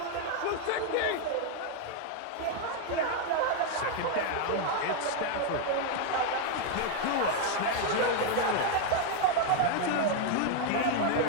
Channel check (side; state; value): both; different; correlation 0.01